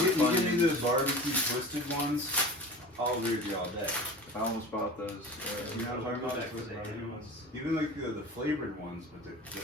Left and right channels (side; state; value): both; normal; correlation 0.35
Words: give me Funyuns. the barbecue twisted ones, I'll agree with you all day. I almost bought those. You know what I'm talking about? Back to the Asian ones. Even like the flavored ones, but the